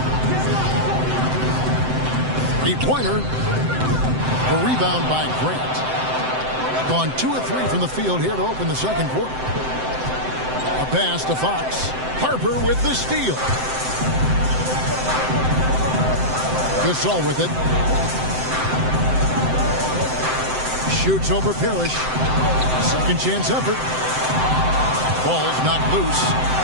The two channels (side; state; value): left; late; 7.8 ms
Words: Three-pointer. The rebound by Grant. Gone 2 of 3 from the field here to open the second quarter. A pass to Fox. Harper with the steal. Gasol with it. Shoots over Parrish. Second chance effort. Ball's knocked loose.